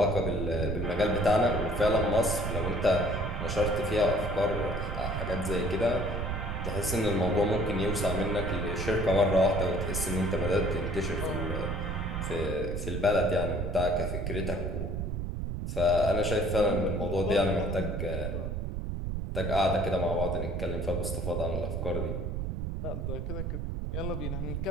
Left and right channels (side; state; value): right; noise; rumble, 3 dB below the sound